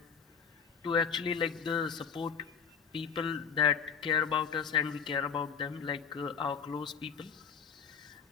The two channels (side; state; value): right; quieter; 6.5 dB